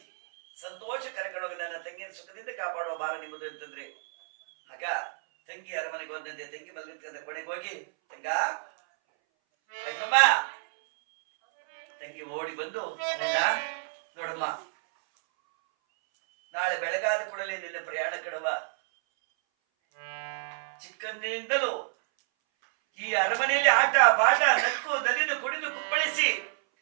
ಸಂತೋಷ ಕರ್ಕೊಂಡೋಗಿ ನನ್ನ ತಂಗಿಯನ್ನು ಸುಖದಿಂದ ಕಾಪಾಡುವ ಭಾರ ನಿಮ್ಮದು ಅಂತಂದ್ರೆ, ಆಗ ತಂಗಿ ಅರಮನೆಗೆ ಹೋದಂತೆ ತಂಗಿ ಮಲಗಿದ ಕೊನೆಗೆ ಹೋಗಿ, ತಂಗ ತಂಗಮ್ಮ, ತಂಗಿ ಓಡಿ ಬಂದು, ನೋಡಮ್ಮ, ನಾಳೆ ಬೆಳಗಾದ ಕೂಡಲೇ ನಿನ್ನ ಪ್ರಯಾಣ ಕಡುವ. ಚಿಕ್ಕಂದಿನಿಂದಲೂ ಈ ಅರಮನೆಯಲ್ಲಿ ಆಟ ಪಾಠ ನಕ್ಕು ನಲಿದು ಕುಡಿದು ಕುಪ್ಪಳಿಸಿ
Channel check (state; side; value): silent; left; 58 dB below the other